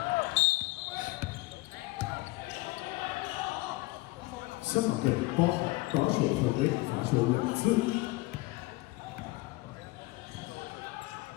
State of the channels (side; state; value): right; quieter; 21.0 dB